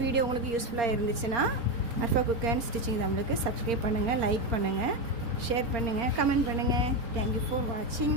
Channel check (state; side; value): late; left; 4.3 ms